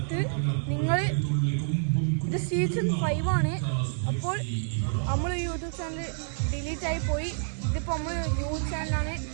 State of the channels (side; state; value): left; silent; digital silence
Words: നിങ്ങൾ ഇത് സീസൺ 5 ആണ്. അപ്പോൾ നമ്മൾ യൂട്യൂബ് ചാനൽ ഡിലീറ്റായി പോയി. ഇതിപ്പോൾ നമ്മൾ ന്യൂ ചാനലാണ്.